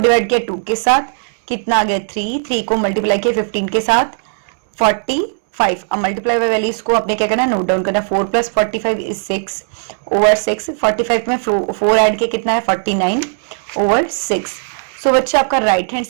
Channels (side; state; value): left; silent; 69 dB below the other